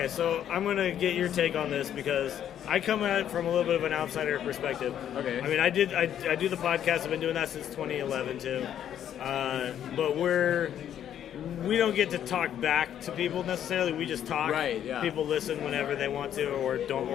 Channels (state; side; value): quieter; right; 10.1 dB